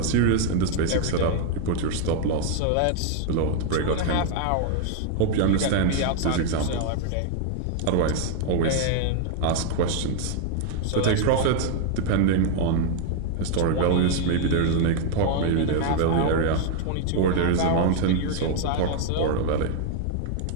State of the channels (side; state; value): both; different; correlation 0.00